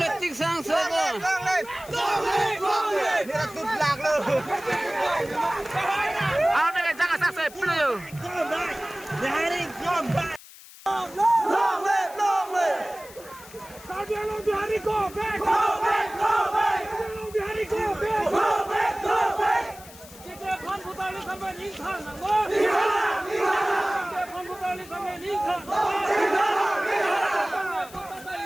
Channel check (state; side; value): noise; left; hiss, 19 dB below the sound